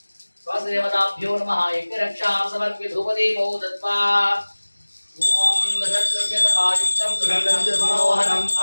स्वस्देवताभ्यो नमः यज्ञरक्षां समर्प्य धूपदीपौ दत्त्वा ॐ दशद्रव्यतपायुक्तं सुगन्धं मनोहरम्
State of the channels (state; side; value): inverted; both; correlation -1.00